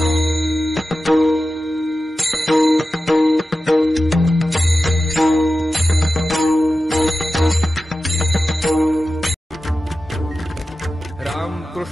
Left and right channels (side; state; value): both; normal; correlation 0.93